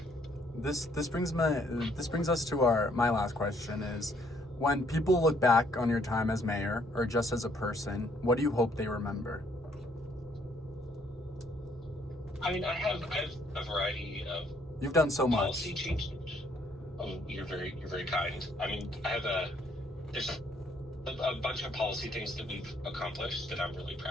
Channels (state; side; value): normal; both; correlation 0.66